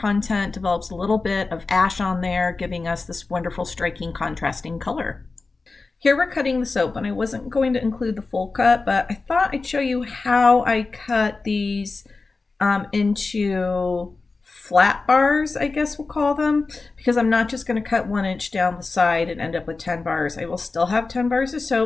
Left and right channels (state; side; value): quieter; right; 3.9 dB